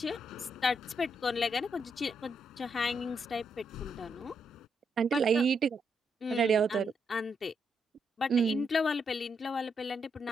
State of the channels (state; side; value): normal; both; correlation 0.79